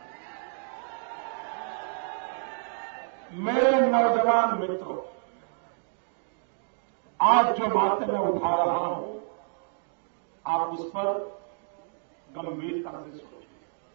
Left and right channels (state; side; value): silent; left; digital silence